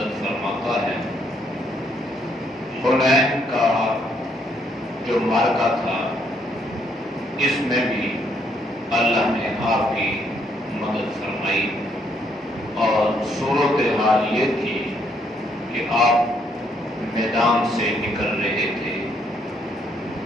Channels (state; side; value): normal; both; correlation 0.71